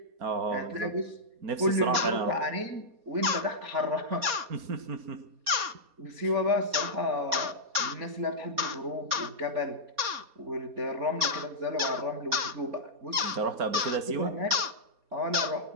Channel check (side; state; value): left; late; 4.2 ms